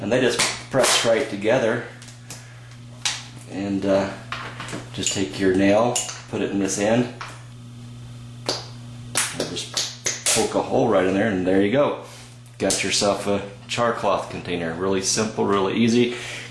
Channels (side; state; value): both; identical; correlation 1.00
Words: And they just press right together. And just take your nail, put it in this end, and just poke a hole right in there, and there you go. Got yourself a char cloth container. Really simple, really easy. You